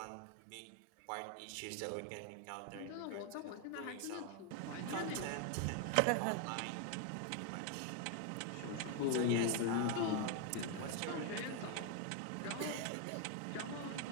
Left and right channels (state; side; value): different; both; correlation 0.01